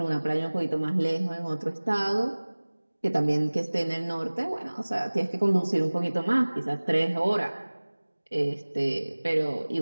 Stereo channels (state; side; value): inverted; both; correlation -1.00